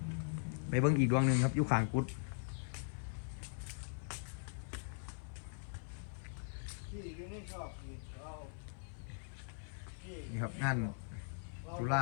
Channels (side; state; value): right; silent; 51 dB below the other